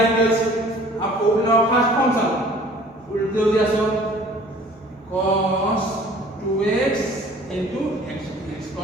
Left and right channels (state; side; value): normal; both; correlation 0.50